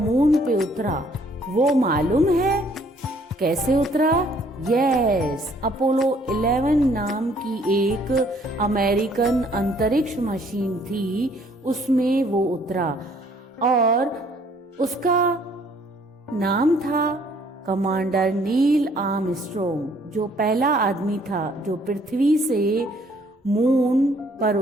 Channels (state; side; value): normal; both; correlation 0.62